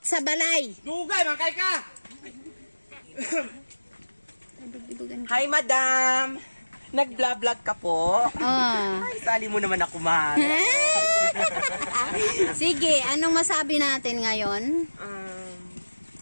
sa balay. Dugay, mangkay ka! Hi madam! Nag-vlog ka po? Ay, sali mo naman ako man. Sige, anong masabi natin ngayon?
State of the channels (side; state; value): both; inverted; correlation -1.00